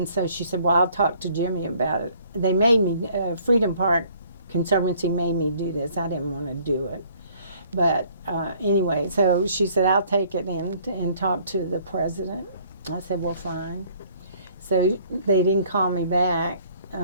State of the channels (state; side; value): inverted; both; correlation -0.59